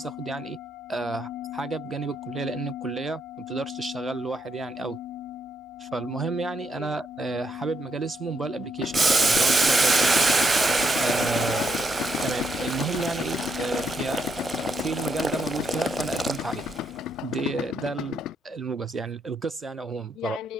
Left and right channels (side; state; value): both; normal; correlation 0.77